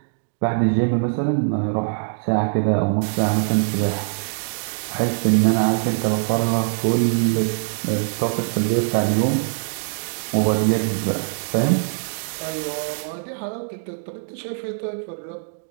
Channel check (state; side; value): silent; left; digital silence